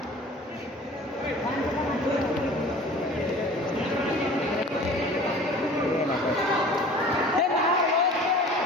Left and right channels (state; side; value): normal; both; correlation 0.44